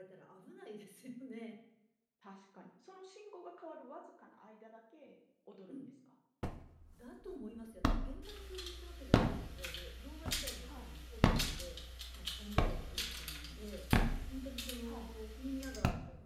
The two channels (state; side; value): identical; both; correlation 1.00